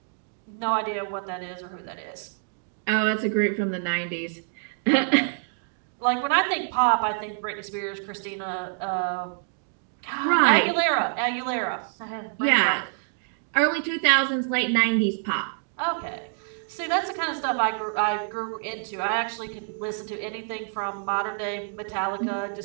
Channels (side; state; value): left; silent; digital silence